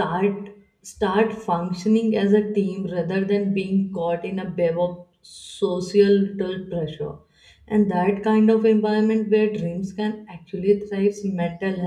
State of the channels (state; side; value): identical; both; correlation 1.00